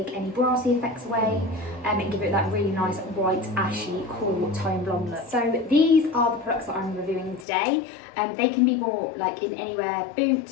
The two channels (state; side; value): drops out; right; at 7.5 s